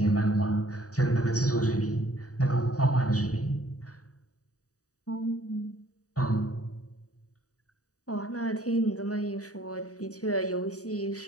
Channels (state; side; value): late; right; 0.66 ms